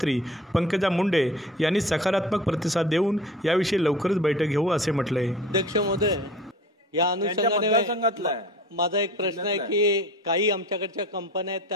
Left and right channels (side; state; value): both; normal; correlation 0.41